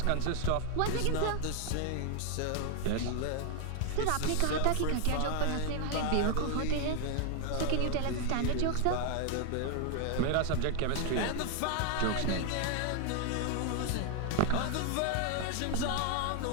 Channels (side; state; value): both; different; correlation 0.00